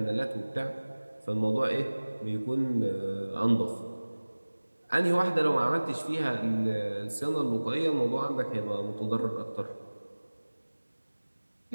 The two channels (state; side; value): inverted; both; correlation -1.00